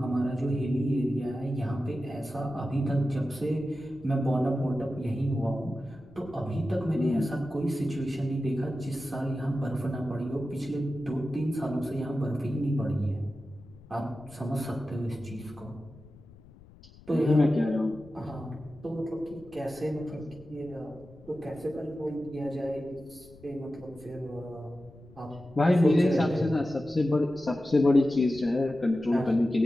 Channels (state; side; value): noise; left; rumble, 23 dB below the sound